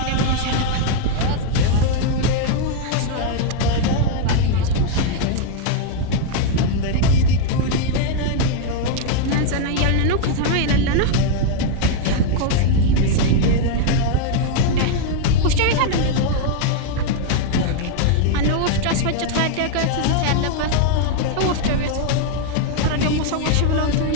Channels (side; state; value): both; different; correlation 0.00